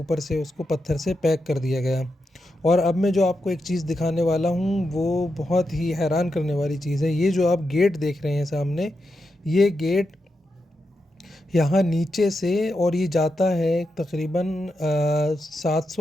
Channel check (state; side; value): normal; both; correlation 0.86